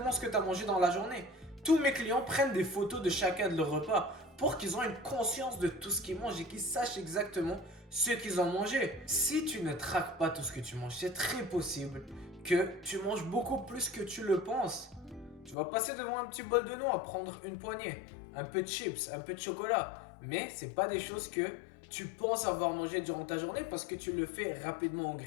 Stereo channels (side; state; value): right; drops out; at 15.6 s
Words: ce que tu as mangé dans la journée. Tous mes clients prennent des photos de chacun de leurs repas pour qu'ils aient une conscience de tout ce qu'ils mangent et qu'ils sachent exactement ce qu'ils ont mangé. Si tu ne traques pas tout ce que tu manges, c'est très possible que tu manges beaucoup plus que tu le penses. Tu vas passer devant un petit bol de noix, prendre une poignée, un peu de chips, un peu de chocolat. Mais ce n'est pas des choses que tu penses avoir mangé durant ta journée parce que tu le fais rapidement en